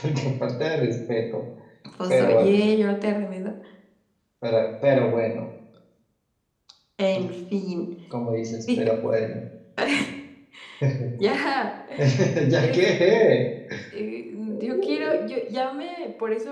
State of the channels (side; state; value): both; identical; correlation 1.00